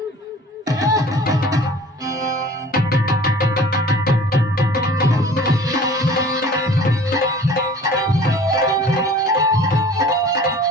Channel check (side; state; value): both; normal; correlation 0.46